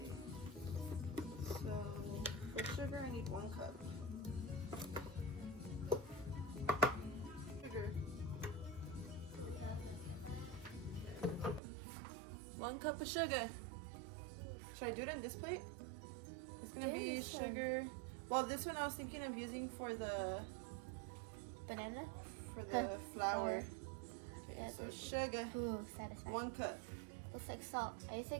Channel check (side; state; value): left; drops out; at 11.6 s